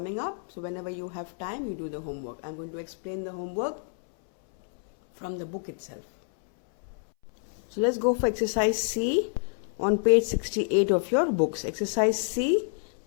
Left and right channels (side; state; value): right; silent; 59 dB below the other